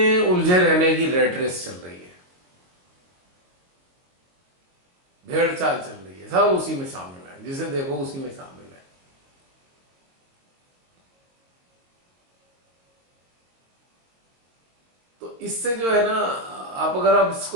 उलझे रहने की रैट रेस चल रही है, भेड़ चाल चल रही है, सब उसी में शामिल है, जिसे देखो उसी में शामिल है। तो इससे जो है ना, आप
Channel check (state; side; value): late; left; 22 ms